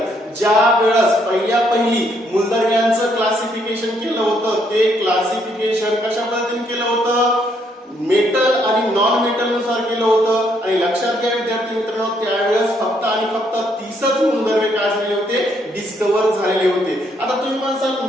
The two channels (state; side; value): normal; both; correlation 0.71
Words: ज्या वेळेस पहिली मूलद्रव्यांचं क्लासिफिकेशन केलं होतं ते क्लासिफिकेशन कशा पद्धतीने केलं होतं? मेटल आणि नॉन मेटल नुसार केलं होतं। आणि लक्षात घ्या विद्यार्थी मित्रांनो, त्यावेळेस फक्त 30च मूलद्रव्ये काय झालेले होते? डिस्कव्हर झालेले होते। आता तुम्ही म्हणसाल